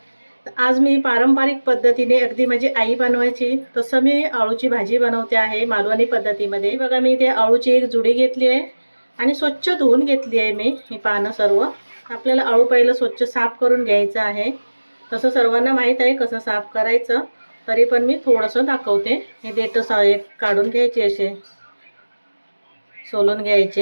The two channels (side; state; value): both; inverted; correlation -1.00